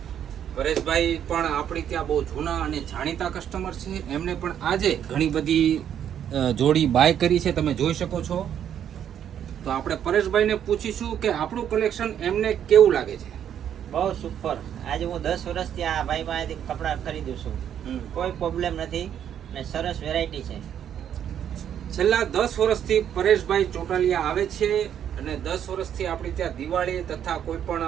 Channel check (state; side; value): quieter; left; 9.5 dB